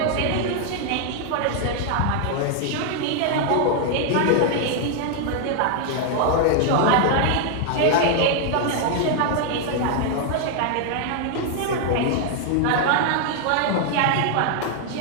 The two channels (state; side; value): different; both; correlation 0.00